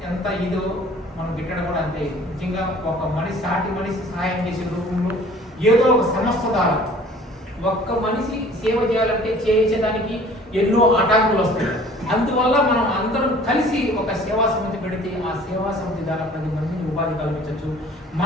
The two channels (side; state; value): both; normal; correlation 0.50